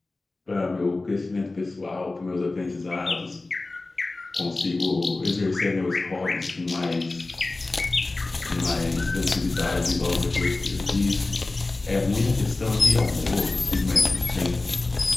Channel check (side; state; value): right; quieter; 3.2 dB